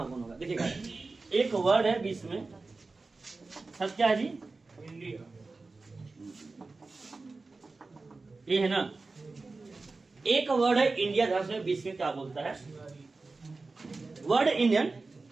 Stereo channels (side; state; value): left; quieter; 3.7 dB